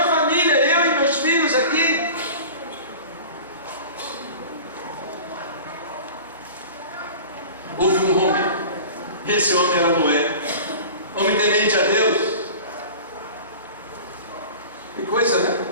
família, eu e meus filhos aqui. Houve um homem, e esse homem era Noé, homem temente a Deus. Que coisa, né?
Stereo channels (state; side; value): inverted; both; correlation -0.38